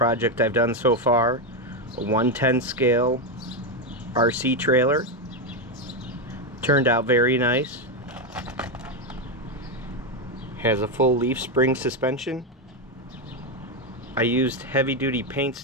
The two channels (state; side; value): normal; both; correlation 0.08